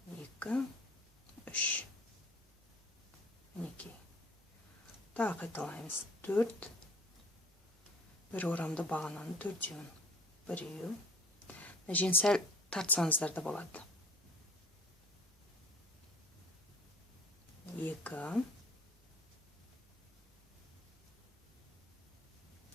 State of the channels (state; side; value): normal; both; correlation 0.49